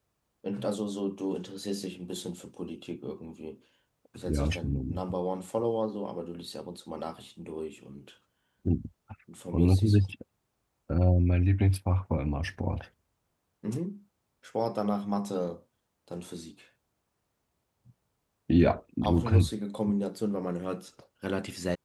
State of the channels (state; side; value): identical; both; correlation 1.00